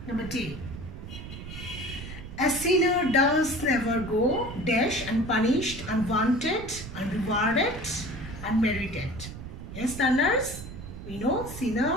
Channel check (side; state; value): right; noise; rumble, 11 dB below the sound